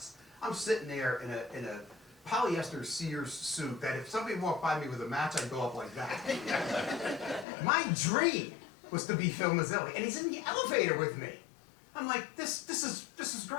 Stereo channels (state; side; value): drops out; right; at 7.5 s